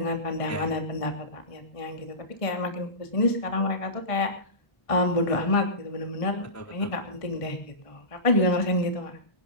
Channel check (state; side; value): late; right; 1.5 ms